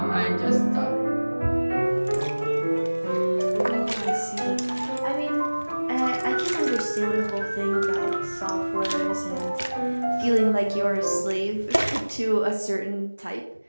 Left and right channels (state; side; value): inverted; both; correlation -1.00